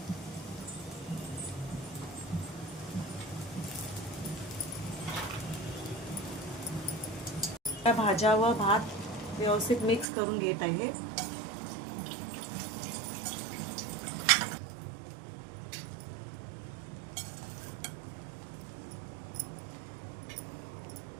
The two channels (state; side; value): drops out; left; at 10.1 s